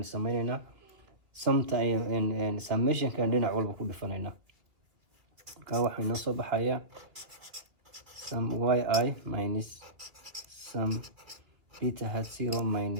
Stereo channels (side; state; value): left; late; 2.5 ms